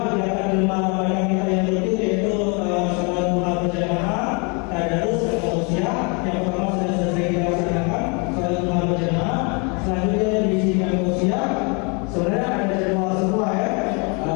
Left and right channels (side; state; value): right; quieter; 33.0 dB